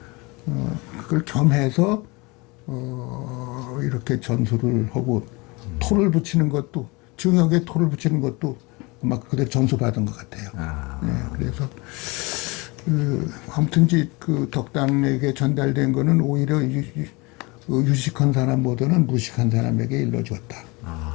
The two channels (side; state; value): right; quieter; 26.1 dB